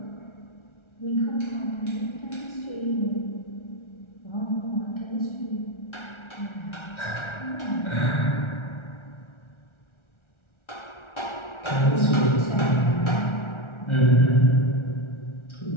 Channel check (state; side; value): late; right; 1.4 ms